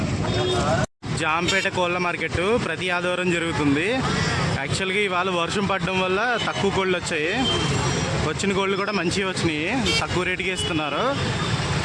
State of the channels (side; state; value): both; identical; correlation 1.00